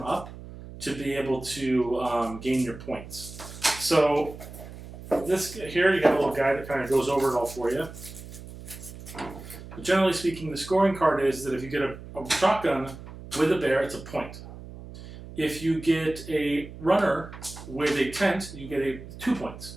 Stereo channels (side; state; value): right; noise; hum, 14 dB below the sound